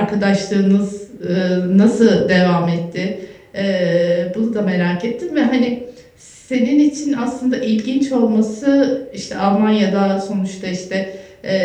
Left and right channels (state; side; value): identical; both; correlation 1.00